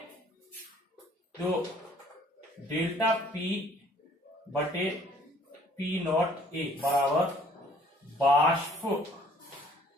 जो डेल्टा पी बटे पी नॉट ए बराबर वाष्प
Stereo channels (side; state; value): both; normal; correlation 0.58